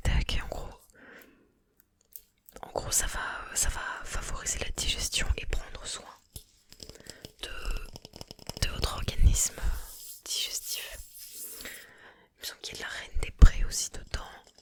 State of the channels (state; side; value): identical; both; correlation 1.00